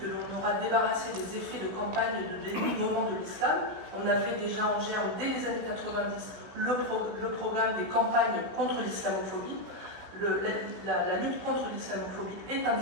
que l'on aura débarrassé des effets de campagne et de dénigrement de l'islam. On avait déjà en germe, dès les années 90, le programme des campagnes contre l'islamophobie. la lutte contre l'islamophobie est un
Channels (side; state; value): left; late; 16 ms